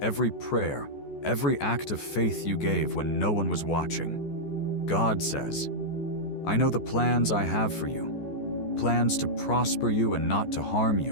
every prayer, every act of faith you gave when no one was watching. God says, I know the plans I have for you. Plans to prosper you and not to harm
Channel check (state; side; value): late; right; 14 ms